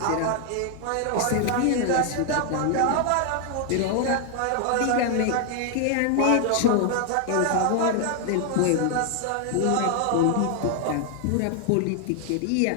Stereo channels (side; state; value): both; different; correlation 0.00